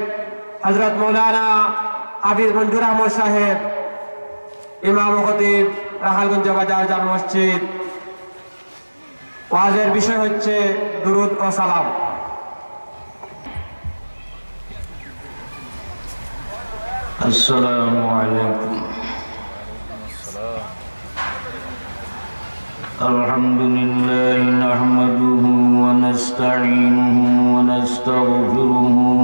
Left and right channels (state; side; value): inverted; both; correlation -1.00